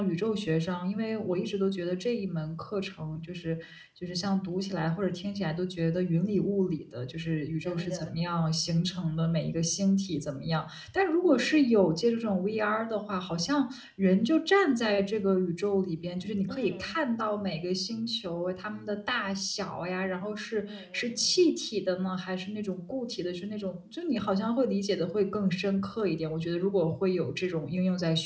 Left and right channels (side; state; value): both; identical; correlation 1.00